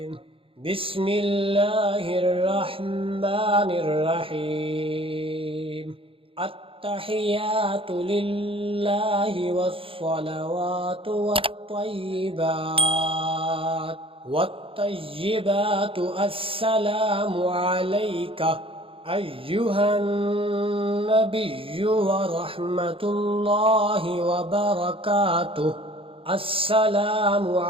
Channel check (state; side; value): late; left; 0.26 ms